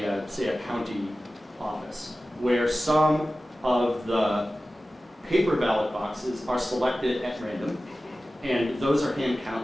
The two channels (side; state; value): both; normal; correlation 0.96